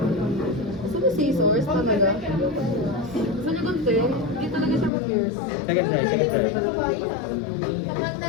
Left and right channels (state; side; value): drops out; right; at 4.9 s